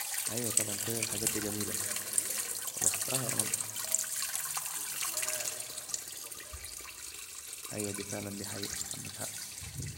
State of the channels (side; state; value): both; identical; correlation 1.00